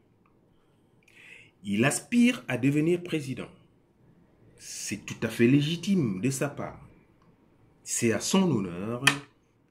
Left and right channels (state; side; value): identical; both; correlation 1.00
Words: Il aspire à devenir président. C'est tout à fait légitime de sa part. C'est à son honneur